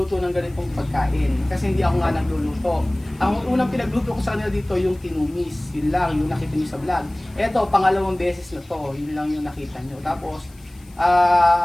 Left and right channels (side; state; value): left; noise; hiss, 28 dB below the sound